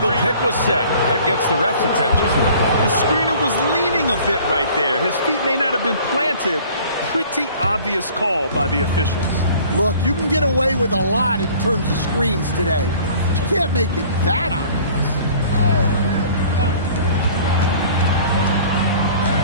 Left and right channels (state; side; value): inverted; both; correlation -0.50